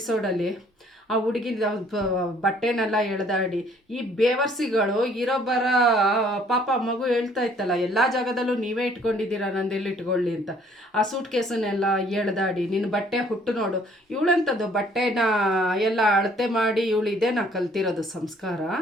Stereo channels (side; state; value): both; normal; correlation 0.60